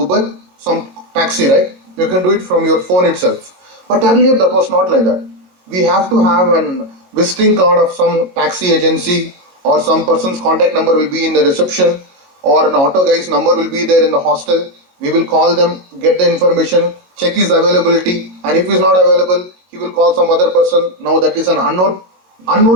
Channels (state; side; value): late; left; 22 ms